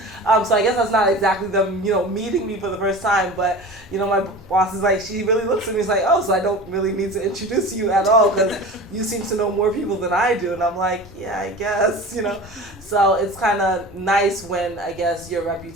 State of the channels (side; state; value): both; normal; correlation 0.35